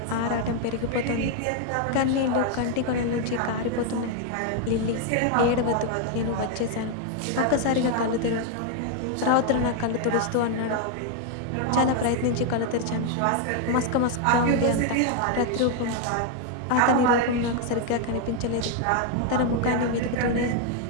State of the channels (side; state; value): both; different; correlation 0.00